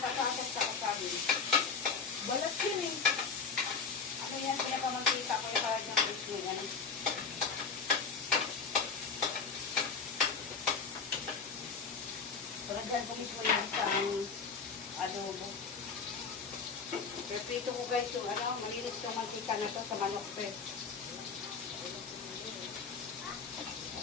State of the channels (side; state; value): right; quieter; 5.4 dB